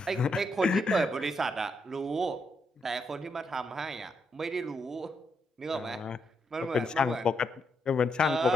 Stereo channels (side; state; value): both; normal; correlation 0.79